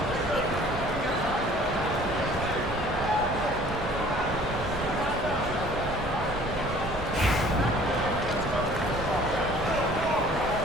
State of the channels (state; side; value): noise; right; rumble, 11 dB below the sound